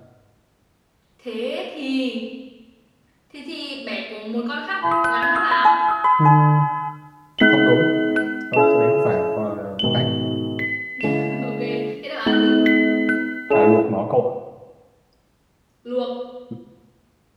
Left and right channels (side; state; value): both; identical; correlation 1.00